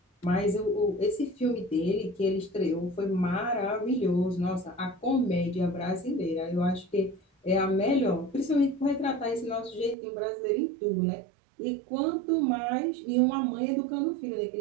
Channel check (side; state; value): left; drops out; at 10.0 s